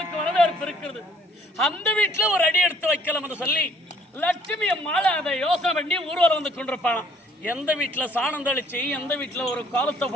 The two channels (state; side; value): normal; both; correlation 0.61